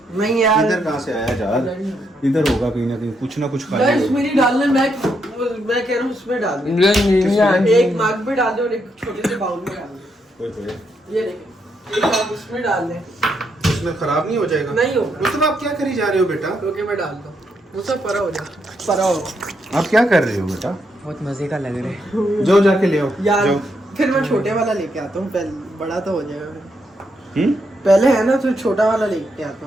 नहीं यार। इधर कहाँ से आया जार? इधर होगा कहीं ना कहीं, कुछ ना कुछ गाइस खाली होगा। मेरी डालने मैं कह रहा हूँ उसमें डाल दे। एक मग में डाल दे और एक छोटे से बाउल में डाल दे। ये देखिए, एक मग उसमें डाल दे। इसमें खराब नहीं हो जाएगा? नहीं होगा। मतलब आप क्या करी जा रहे हो बेटा? ओके मैं डाल दूँ, वो सब परा हो जाए। परा हो आप क्या कर रहे हो बेटा? बहुत मजे का लग रहा है। जाओ जाके ले आओ यार। जाओ। फिर मैं छोटे वाला लेके आता हूँ, पहले बड़ा तो हो जाएगा। हम्म? पहले है ना, तो छोटा वाला लेके आता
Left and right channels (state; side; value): normal; both; correlation 0.78